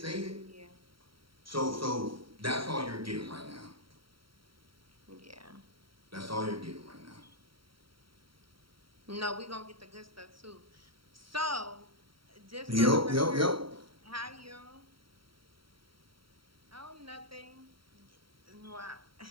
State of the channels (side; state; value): left; late; 0.74 ms